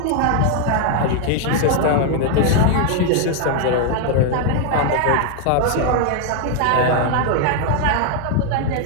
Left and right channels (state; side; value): different; both; correlation 0.00